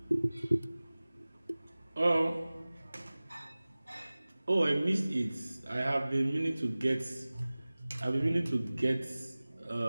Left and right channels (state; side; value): inverted; both; correlation -0.99